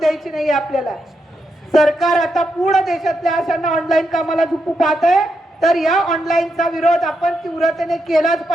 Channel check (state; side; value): normal; both; correlation 0.83